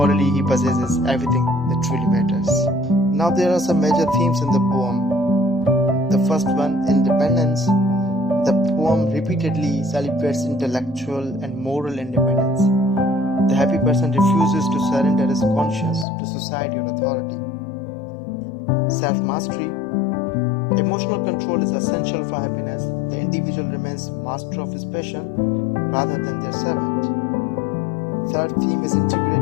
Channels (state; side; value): drops out; right; at 16.1 s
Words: he possesses everything that truly matters. Now there are some major themes in the poem. The first one, independence. The poem repeatedly celebrates intellectual and moral independence. The happy person refuses to surrender his conscience to society or authority. Self-mastery. Emotional control is essential for happiness. The individual remains master of his passion rather than their servant. Third theme is